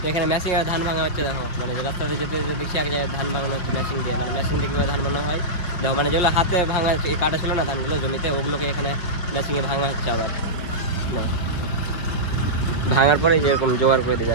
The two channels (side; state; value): right; late; 5.4 ms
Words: এখানে মেশিন আর ধান ভাঙা হচ্ছে। দেখো মানে রাস্তাতে যেতে দেখছি এক জায়গায় ধান ভাঙানো হচ্ছে মেশিন দিয়ে, মানে মেশিন দিয়ে কীভাবে ধান ভাঙা হয়। দেখো মানে যেগুলো হাতে ভাঙা কাটা ছিল না ধানগুলো জমিতে, ওগুলোকে এখানে মেশিনে ভাঙা হচ্ছে আবার। না ভাঙার পরে যেরকম জোগাড় করে দিতে